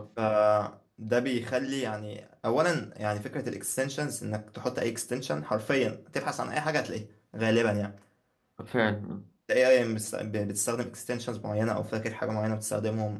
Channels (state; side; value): identical; both; correlation 1.00